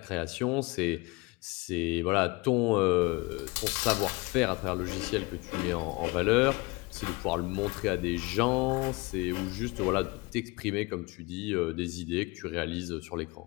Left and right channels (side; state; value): right; quieter; 25.2 dB